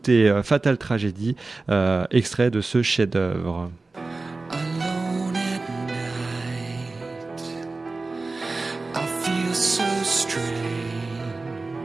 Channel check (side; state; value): left; quieter; 3.5 dB